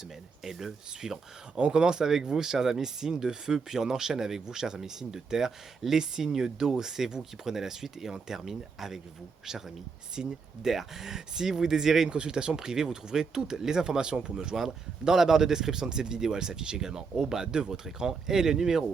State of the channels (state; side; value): quieter; left; 5.0 dB